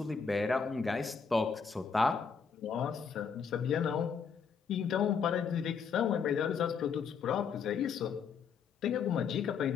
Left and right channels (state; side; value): quieter; right; 6.2 dB